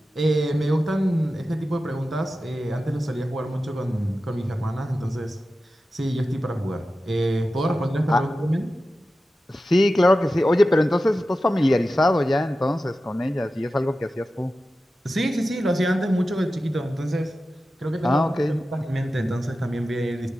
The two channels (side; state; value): both; normal; correlation 0.93